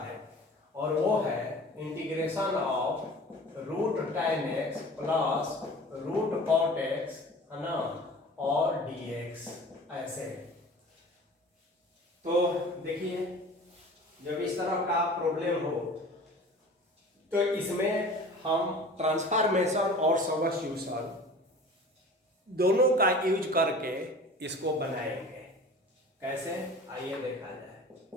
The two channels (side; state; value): both; normal; correlation 0.41